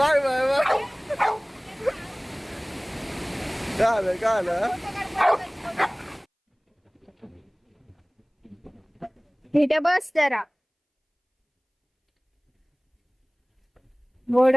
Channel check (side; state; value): both; identical; correlation 1.00